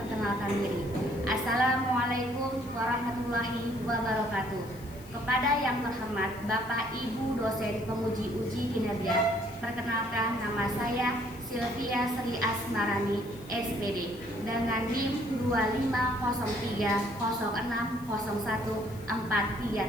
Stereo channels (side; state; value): left; noise; hiss, 23 dB below the sound